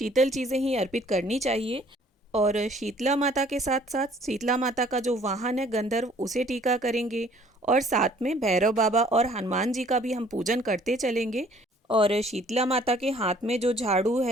चीज़ें ही अर्पित करनी चाहिए। और शीतला माता के साथ साथ शीतला माता का जो वाहन है गंधर्व, उसे टीका करेंगे। और साथ में भैरव बाबा और हनुमान जी का भी हम पूजन करते चलेंगे। और शीतला माता के हाथ में जो झाड़ू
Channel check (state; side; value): normal; both; correlation 0.57